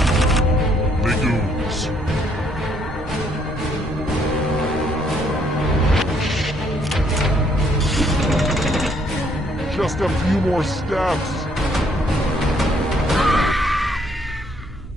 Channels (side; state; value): both; normal; correlation 0.68